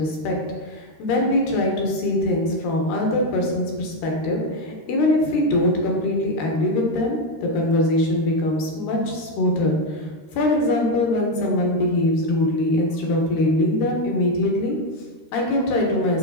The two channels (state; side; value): late; right; 13 ms